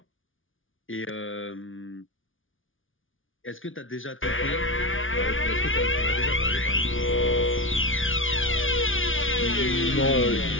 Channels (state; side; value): late; right; 0.57 ms